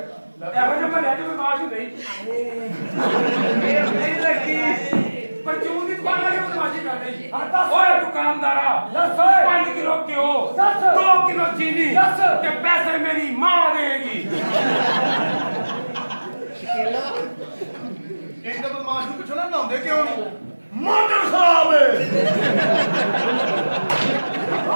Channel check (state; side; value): inverted; both; correlation -1.00